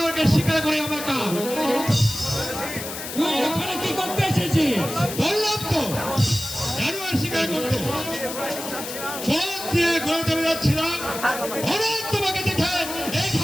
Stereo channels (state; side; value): noise; left; hiss, 8 dB below the sound